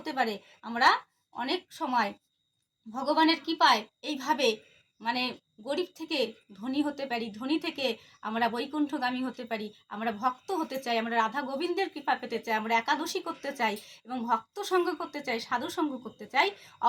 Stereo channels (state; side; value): identical; both; correlation 1.00